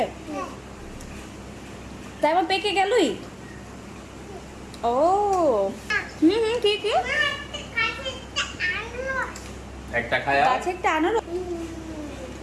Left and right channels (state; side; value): identical; both; correlation 1.00